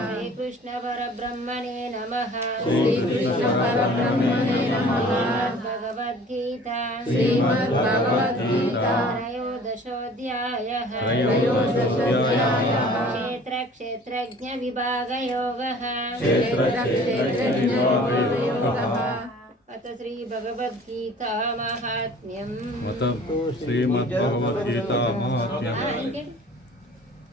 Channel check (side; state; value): both; normal; correlation 0.48